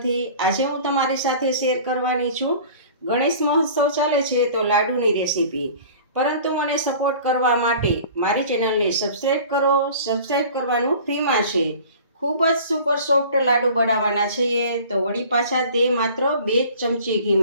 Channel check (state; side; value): inverted; both; correlation -0.44